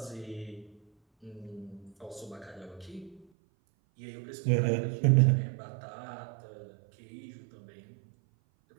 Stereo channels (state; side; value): drops out; left; at 3.2 s